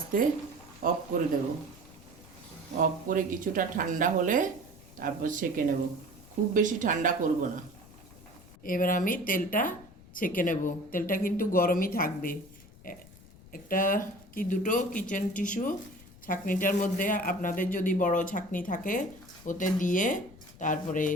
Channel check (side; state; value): left; noise; rumble, 21 dB below the sound